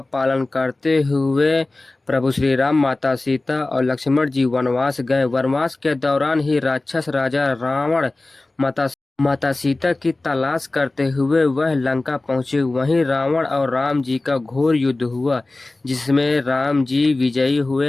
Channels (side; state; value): right; quieter; 3.0 dB